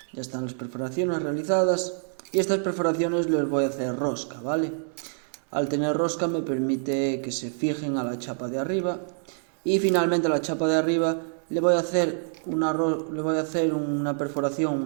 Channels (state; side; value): silent; left; 61 dB below the other